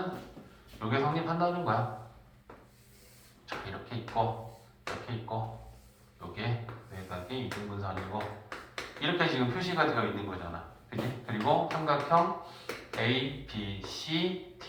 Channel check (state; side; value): identical; both; correlation 1.00